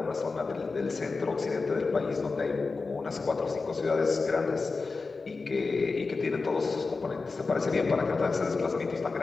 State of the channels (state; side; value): quieter; right; 4.1 dB